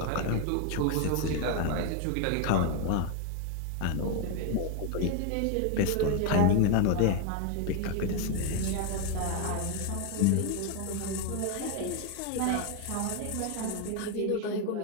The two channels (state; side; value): different; both; correlation 0.00